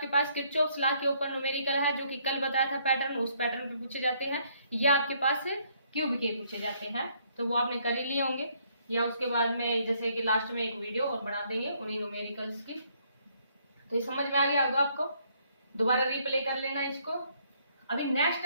पास किरचॉफ्स लॉ के ऊपर न्यूमेरिकल है जो कि कल बताया था पैटर्न, उस पैटर्न पे पूछे जाते हैं, या आपके पास क्यूब के पूछे जाते हैं, तो वो आपने कर ही लिए होंगे, या उसके बाद में जैसे कि लास्ट में एक वीडियो और बना देंगे उन्हीं न्यूमेरिकल्स की। तो ये समझ में आ गया होगा आपको, दोबारा रिप्ले कर लेना इसको। अभी नेक्स्ट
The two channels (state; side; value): inverted; both; correlation -0.68